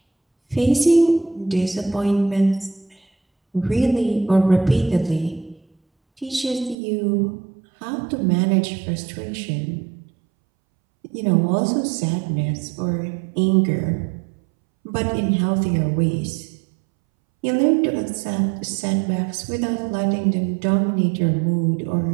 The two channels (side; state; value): left; drops out; at 6.8 s